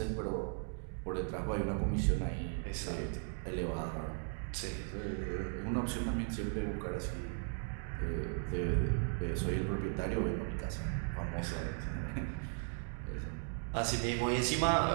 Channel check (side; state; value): left; silent; 53 dB below the other